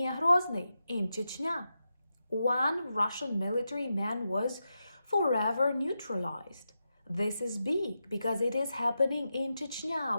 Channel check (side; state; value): both; inverted; correlation -0.89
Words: Grozny in Chechnya. One Russian military man was forever neutralized. This is big because it is happening in Chechnya,